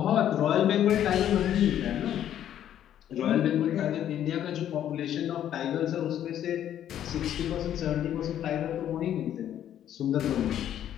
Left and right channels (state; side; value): quieter; right; 10.8 dB